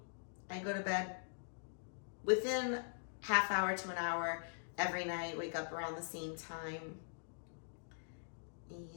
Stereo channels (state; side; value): silent; right; digital silence